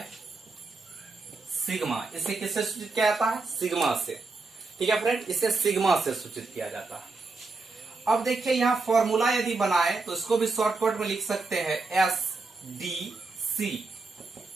sigma. इसे किससे सूचित किया जाता है, सिग्मा से, ठीक है फ्रेंड, इसे सिग्मा से सूचित किया जाता है। अब देखिए यहां फॉर्मूला यदि बनाए तो इसको भी शॉर्टकट में लिख सकते हैं SDC,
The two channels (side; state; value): left; quieter; 3.8 dB